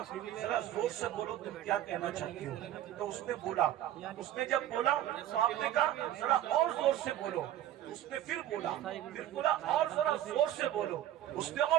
जरा जोर से बोलो तुम क्या कहना चाहती हो। तो उसने बोला, उसने जब बोला तो आपने कहा जरा और जोर से बोलो। उसने फिर बोला और जरा जोर से बोलो। उसने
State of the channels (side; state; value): left; quieter; 12.5 dB